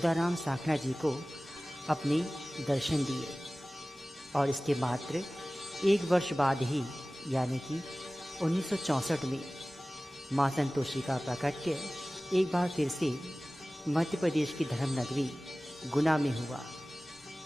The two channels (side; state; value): both; normal; correlation 0.98